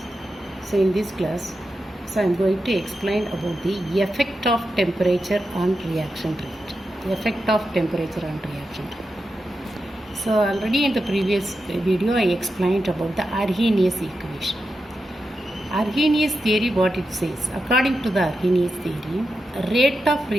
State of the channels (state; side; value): normal; both; correlation 0.89